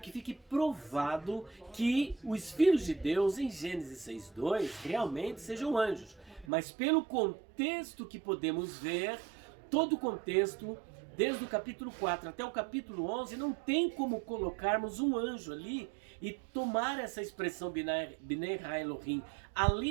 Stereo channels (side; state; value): left; drops out; at 6.5 s